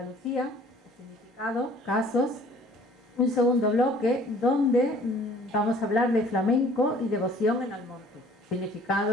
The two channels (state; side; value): normal; both; correlation 0.53